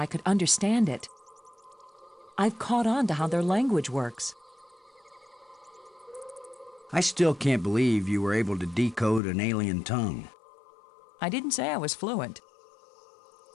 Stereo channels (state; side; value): drops out; right; at 9.2 s